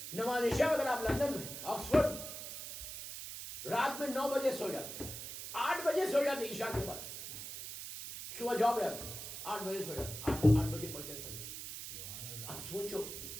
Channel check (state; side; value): noise; right; hiss, 8 dB below the sound